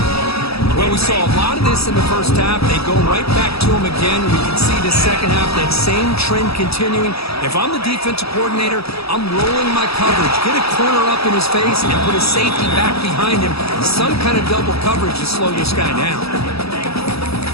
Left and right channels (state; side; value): late; right; 0.77 ms